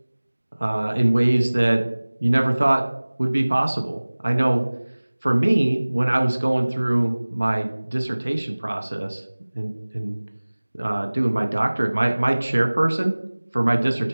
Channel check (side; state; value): both; inverted; correlation -1.00